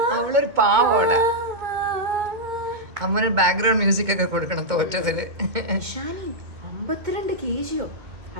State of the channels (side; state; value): left; late; 2.2 ms